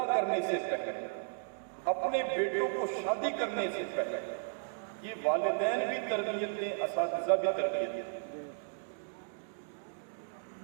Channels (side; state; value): left; silent; digital silence